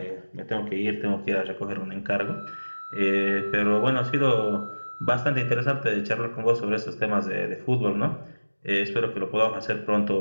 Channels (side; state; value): both; inverted; correlation -1.00